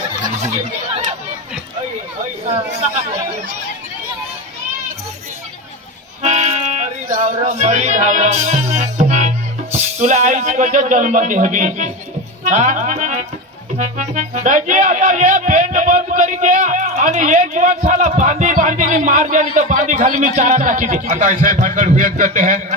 मरी धावरा तुला आईच कशा जन्म दे हवी दाजी आता ये पेंट बंद करी द्या आणि ये जीवनशाला बांधी बांधीने मार द्या तर बांधी खाली मी चारा टाकी दे आता ऐसे भानगड हुयत करते हैं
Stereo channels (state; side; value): normal; both; correlation 0.20